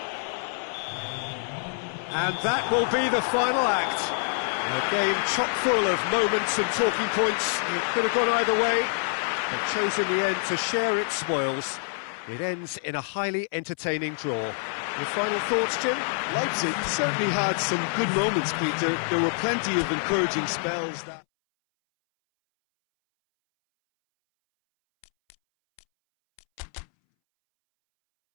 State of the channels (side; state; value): right; silent; 61 dB below the other